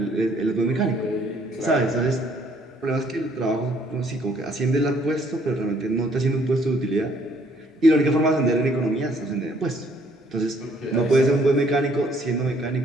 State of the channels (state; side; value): normal; both; correlation 0.64